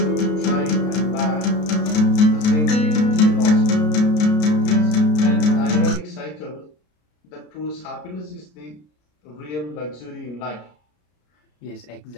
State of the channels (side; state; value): right; late; 33 ms